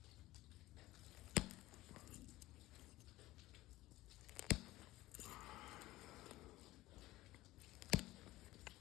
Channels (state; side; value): quieter; right; 17.6 dB